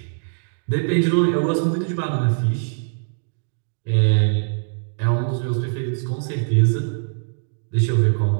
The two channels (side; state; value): left; silent; digital silence